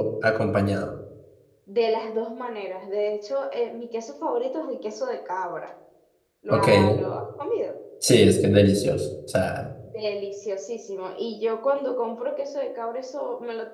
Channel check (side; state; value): both; identical; correlation 1.00